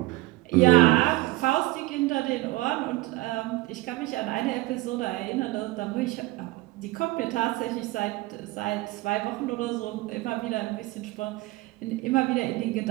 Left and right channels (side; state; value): left; quieter; 19.7 dB